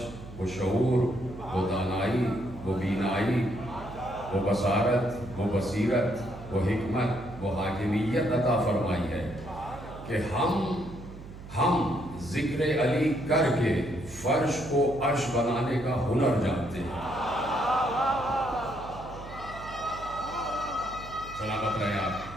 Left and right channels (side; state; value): right; noise; hum, 14 dB below the sound